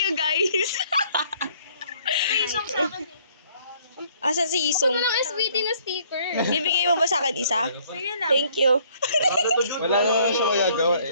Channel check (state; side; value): inverted; both; correlation -0.61